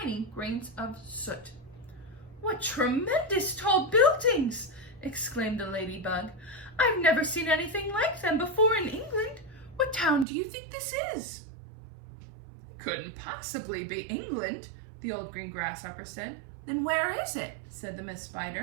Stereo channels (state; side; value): drops out; left; at 10.2 s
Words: grains of soot. "What tremendous tall buildings!" exclaimed the ladybug. "I've never seen anything like them before in England. What town do you think this is?" "Couldn't possibly be England," the old green grasshopper said. "Then where is it?" said the Miss